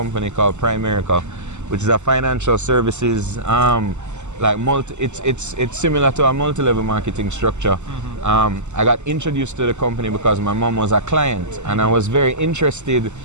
called Primerica, which is a financial services like it's similar to a multi-level marketing structure. I got introduced to the company because my mom was a client, and I was very interested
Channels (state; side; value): late; left; 0.83 ms